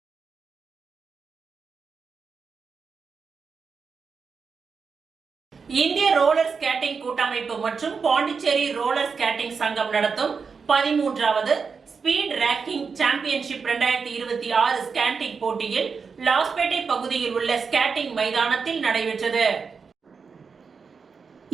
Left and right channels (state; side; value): quieter; left; 5.4 dB